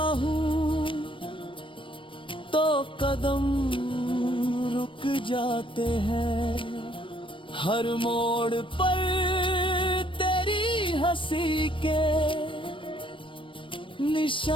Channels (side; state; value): right; late; 0.25 ms